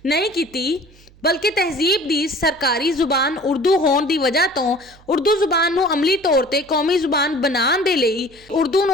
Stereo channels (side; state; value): right; noise; hum, 26 dB below the sound